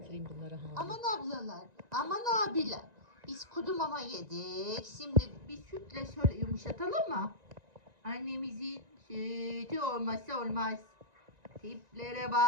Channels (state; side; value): late; left; 1.9 ms